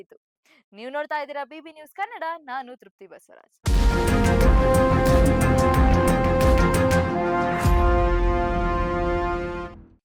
ನೀವು ನೋಡ್ತಾ ಇದ್ದೀರಾ ಬಿಬಿ ನ್ಯೂಸ್ ಕನ್ನಡ. ನಾನು ತೃಪ್ತಿ ಬಸವರಾಜ್.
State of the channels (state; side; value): identical; both; correlation 1.00